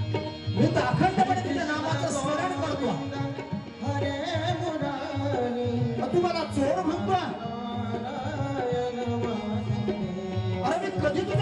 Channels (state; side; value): identical; both; correlation 1.00